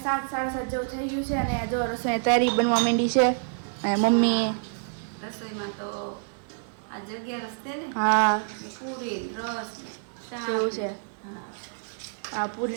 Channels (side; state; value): left; silent; 59 dB below the other